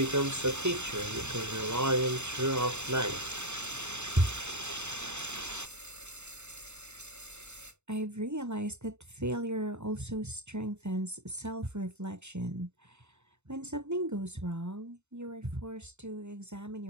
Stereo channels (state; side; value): late; left; 0.82 ms